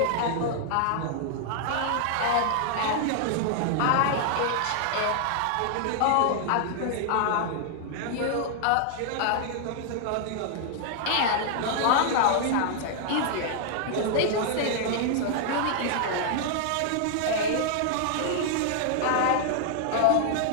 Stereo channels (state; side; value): different; both; correlation -0.01